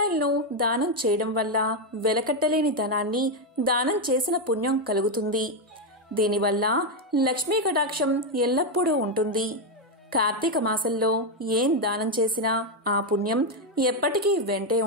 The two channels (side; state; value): both; normal; correlation 0.05